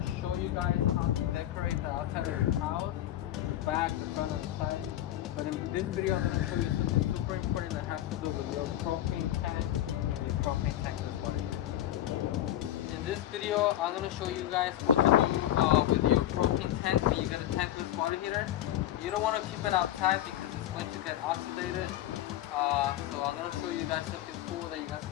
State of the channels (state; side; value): quieter; right; 12.8 dB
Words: show you guys how to decorate the outside of your house, the back, the front, and the side. But in this video, I'm going to show you something super important that has to do with your propane tank and your propane tankless water. In this video, I'm going to show you guys what to do with your propane tank when you get a tankless water heater. You don't want to keep it outside because it's going to get oxidated. So I'm going to show you guys something cool that you guys